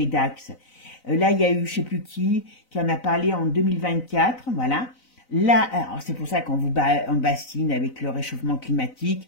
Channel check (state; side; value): late; right; 4.0 ms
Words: d'axe. Là, il y a eu, je ne sais plus qui en a parlé en 2024, voilà. Là, c'est pour ça qu'on vous bassine avec le réchauffement